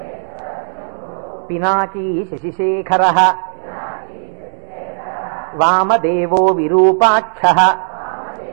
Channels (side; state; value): left; silent; 64 dB below the other